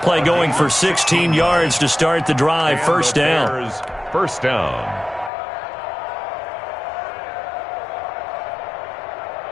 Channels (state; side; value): drops out; right; at 5.3 s